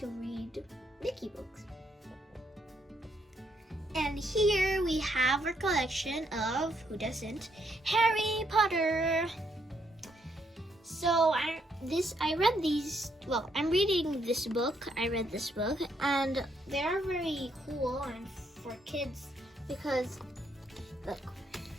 read Nikki books. And here we have our collection of, who doesn't, Harry Potter. So I'm reading this book. I read this book, and they are very cool and for kids because, look,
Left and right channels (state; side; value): normal; both; correlation 0.74